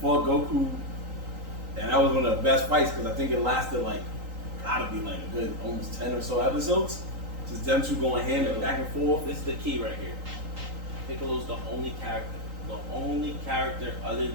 Goku, and that was one of the best fights because I think it lasted gotta be a good almost 10 or so episodes. Just them two going hand back and forth. This is the key right here. Piccolo's the only character other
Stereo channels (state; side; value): late; left; 3.8 ms